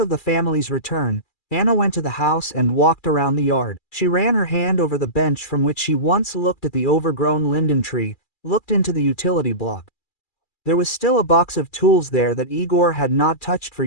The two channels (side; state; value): right; late; 2.4 ms